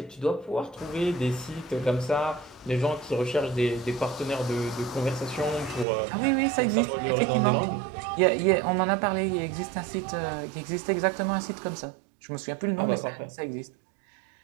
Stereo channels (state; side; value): drops out; left; at 5.9 s